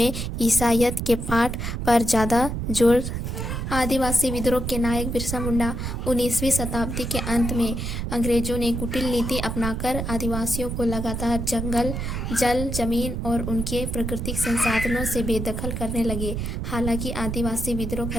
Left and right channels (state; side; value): noise; right; rumble, 3 dB below the sound